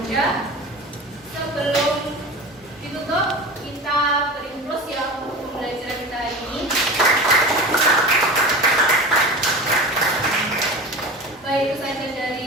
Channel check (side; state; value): both; normal; correlation 0.31